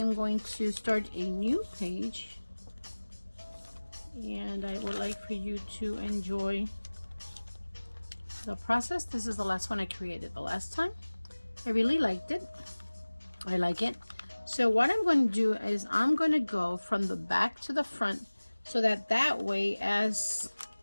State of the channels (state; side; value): inverted; both; correlation -1.00